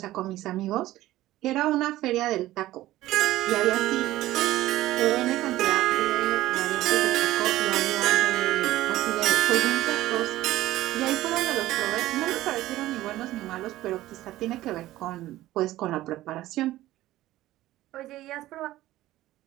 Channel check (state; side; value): quieter; left; 15.7 dB